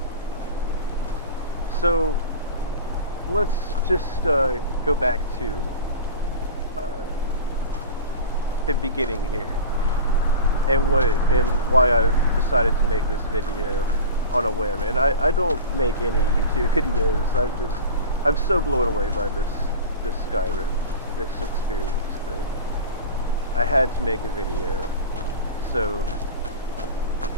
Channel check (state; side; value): inverted; both; correlation -0.33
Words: So, let's just go back to uh, the beginning here, and why I've decided to make this video on a whim. And I don't make any YouTube videos. I'm so blown away by this Skyrim, this experience, that I had to make a video. So,